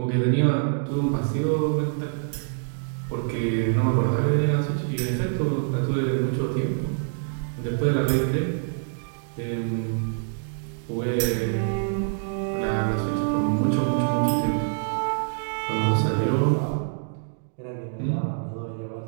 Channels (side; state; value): left; silent; digital silence